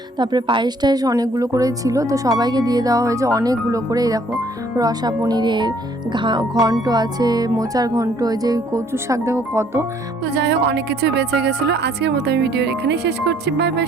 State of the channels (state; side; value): normal; both; correlation 0.62